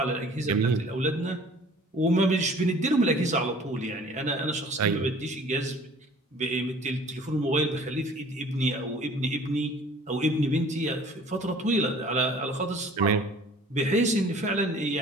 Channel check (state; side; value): normal; both; correlation 0.50